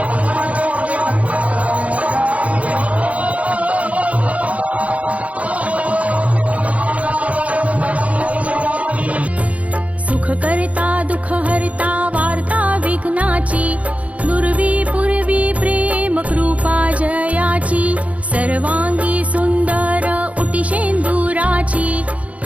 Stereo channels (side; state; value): left; late; 0.066 ms